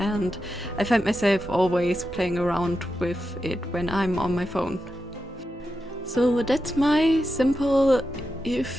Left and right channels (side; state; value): both; normal; correlation 0.89